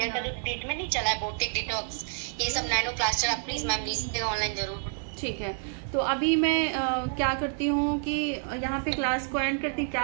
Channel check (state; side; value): silent; left; 59 dB below the other